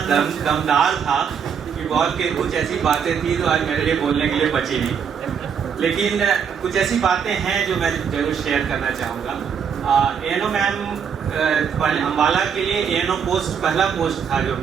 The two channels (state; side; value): quieter; left; 7.1 dB